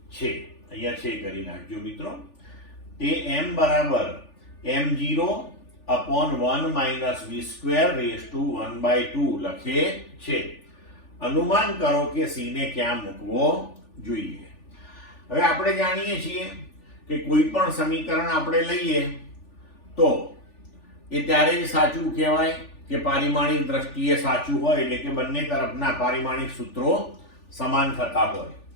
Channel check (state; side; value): late; right; 3.4 ms